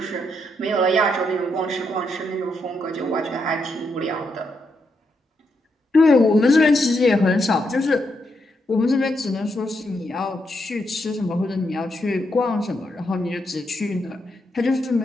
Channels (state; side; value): normal; both; correlation 0.80